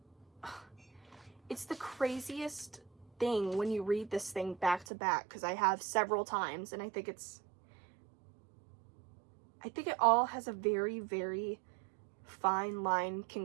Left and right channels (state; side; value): drops out; left; at 4.9 s